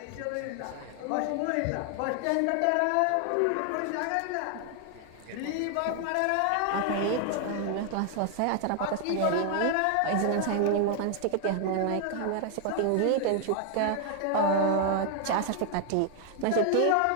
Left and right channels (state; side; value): different; both; correlation 0.00